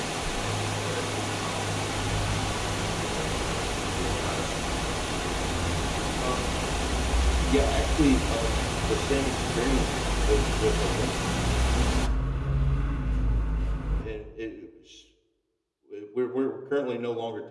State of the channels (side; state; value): both; identical; correlation 1.00